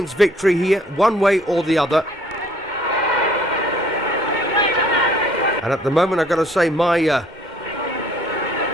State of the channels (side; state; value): both; normal; correlation 0.59